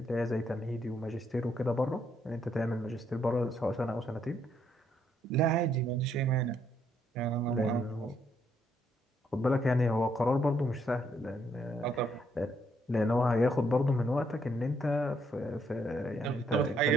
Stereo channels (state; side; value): normal; both; correlation 0.72